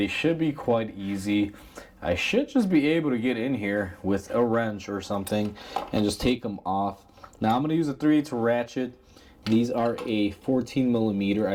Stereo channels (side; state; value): both; identical; correlation 1.00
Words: should be quite easy. I should just be able to get in here with a wrench or something and just take them off. Now I'm going to use a 3/8 ratchet. These are a 14 millimeter,